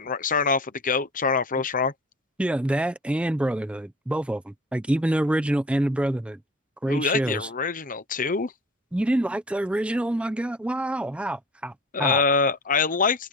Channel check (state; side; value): normal; both; correlation 0.41